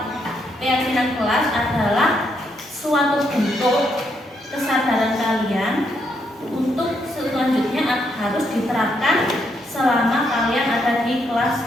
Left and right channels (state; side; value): normal; both; correlation 0.77